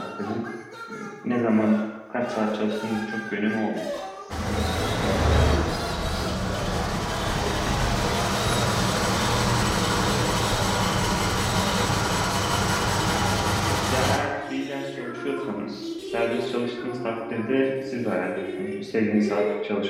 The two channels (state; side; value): identical; both; correlation 1.00